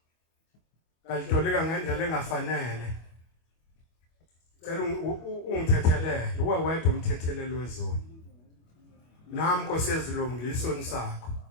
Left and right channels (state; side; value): late; right; 25 ms